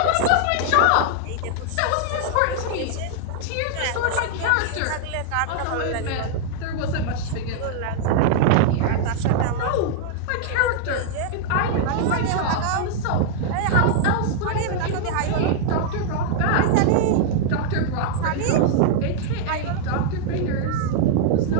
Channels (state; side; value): different; both; correlation -0.01